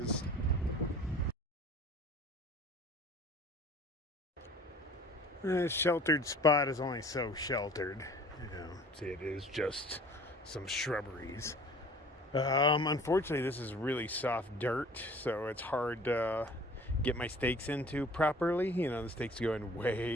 The sheltered spot is only so sheltered. You know, see, it is just some shrubberies. Unfortunately, this is really soft dirt, so it's hard to get my stakes into properly. You know, the stakes are going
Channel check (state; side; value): normal; both; correlation 0.48